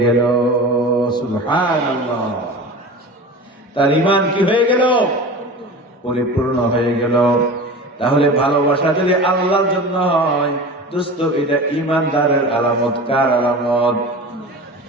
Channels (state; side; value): normal; both; correlation 0.33